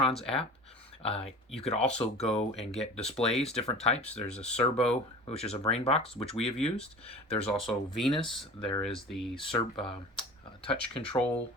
app. You could also go and get displays, different types. There's a Servo, which is a brain box, which we have used. There's also Venus. There is the Touch Control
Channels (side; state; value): both; normal; correlation 0.38